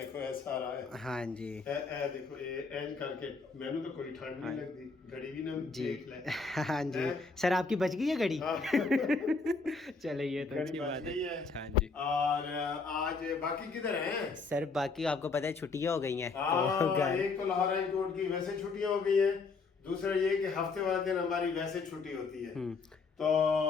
اے سارا ہے۔ ہاں جی اے دیکھو اینج کر کے مینوں تو کوئی ٹھنڈ نہیں لگتی، گھڑی بھی نہ جی دیکھ لے۔ ہاں جی سر، آپ کی بچ گئی ہے گھڑی؟ ہاں، چلے یہ تو گھڑی اچھی بچ بات گئی ہے۔ ہے۔ ہاں جی اور آج باقی کدھر ہیں؟ سر باقی آپ کو پتہ ہے چھٹیاں ہو گئی ہیں تو ہاں، گھر۔ ایک تو لاہور ہائی کورٹ کی ویسے چھٹیاں ہو گئی ہیں، دوسرا یہ کہ ہفتے والے دن ہماری ویسے چھٹی ہوتی ہے۔ تو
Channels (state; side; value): quieter; right; 4.4 dB